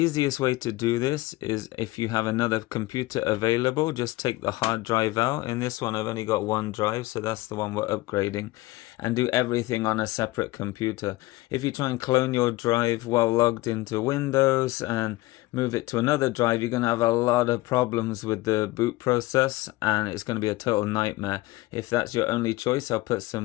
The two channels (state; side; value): quieter; right; 19.4 dB